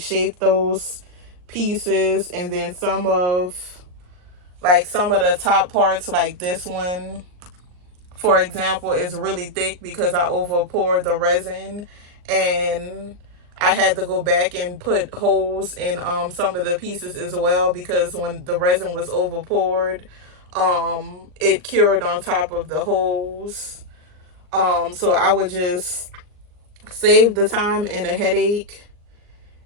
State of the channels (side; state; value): left; late; 39 ms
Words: those pieces. And then some of the top parts, like this one for example, is really thick because I over poured the resin, and I had to go back and put holes in some of the pieces as well, because when the resin was over poured, it cured on top of the holes. So I would just save the time and a headache